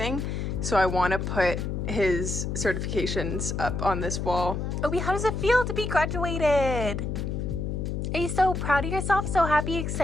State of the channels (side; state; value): left; noise; hum, 2 dB below the sound